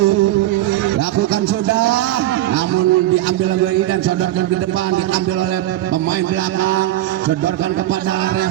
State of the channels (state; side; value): quieter; left; 14.7 dB